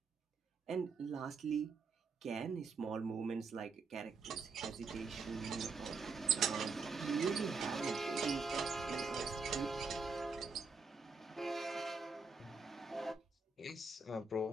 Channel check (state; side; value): quieter; left; 4.4 dB